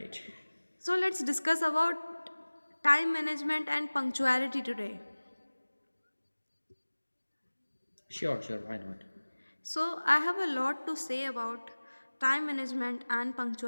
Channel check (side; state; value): both; inverted; correlation -1.00